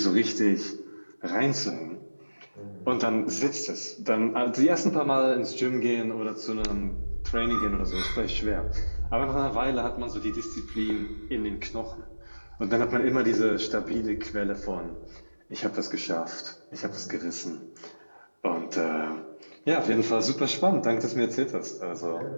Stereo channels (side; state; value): both; inverted; correlation -1.00